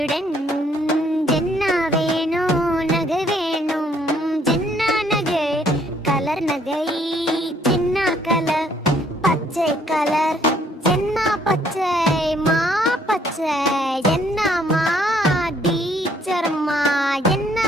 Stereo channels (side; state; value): both; normal; correlation 0.65